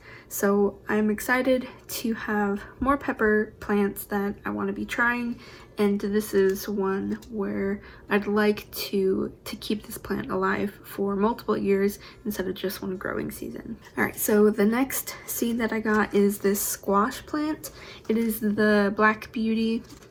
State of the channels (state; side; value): identical; both; correlation 1.00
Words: So I'm excited to have more pepper plants that I want to be trying, and this is one where I'd like to keep this plant alive for multiple years instead of just one growing season. All right, so the next seed that I got is this squash plant. It is the Black Beauty